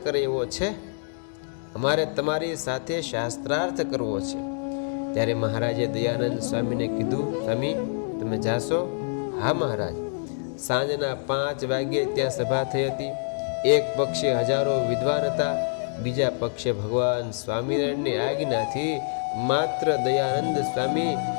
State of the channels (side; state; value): right; silent; digital silence